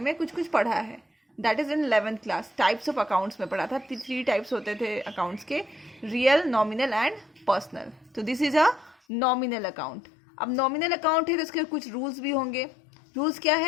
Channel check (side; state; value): right; drops out; at 9.0 s